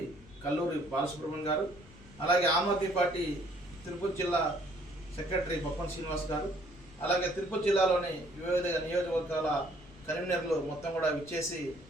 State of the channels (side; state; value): left; noise; rumble, 22 dB below the sound